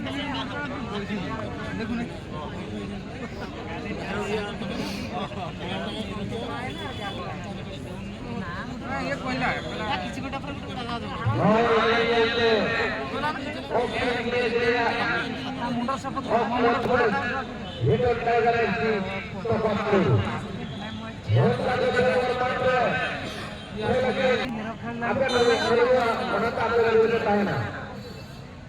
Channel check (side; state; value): both; identical; correlation 1.00